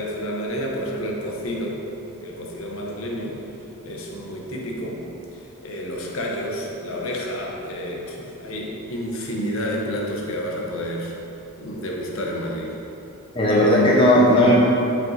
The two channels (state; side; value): normal; both; correlation 0.28